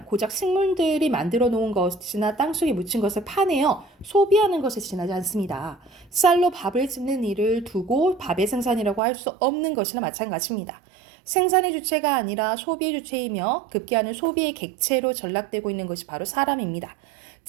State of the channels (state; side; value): drops out; left; at 9.0 s